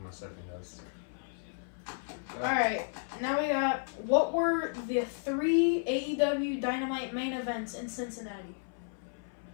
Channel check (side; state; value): right; silent; 56 dB below the other